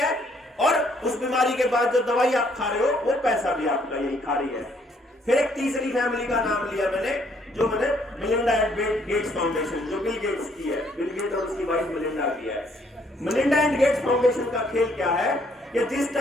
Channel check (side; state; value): both; normal; correlation 0.67